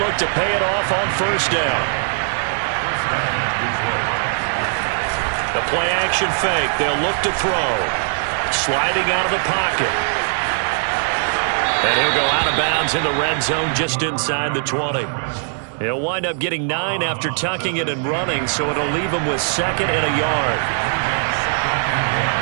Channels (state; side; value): silent; left; digital silence